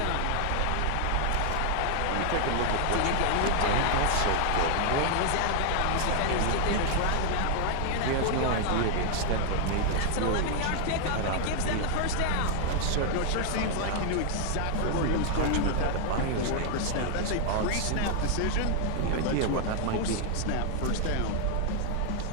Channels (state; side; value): different; both; correlation 0.00